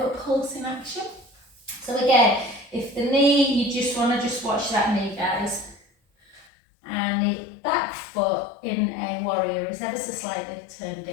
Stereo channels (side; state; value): right; drops out; at 6.5 s